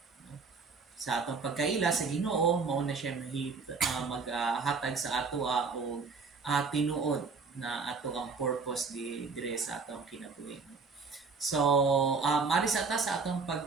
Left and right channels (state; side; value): quieter; left; 4.8 dB